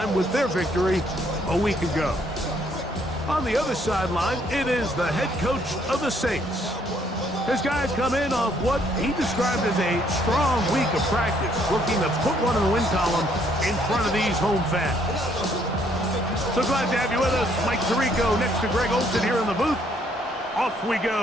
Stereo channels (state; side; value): normal; both; correlation 0.67